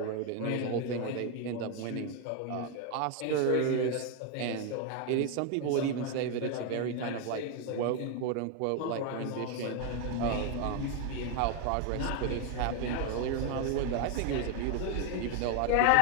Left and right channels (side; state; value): both; different; correlation 0.01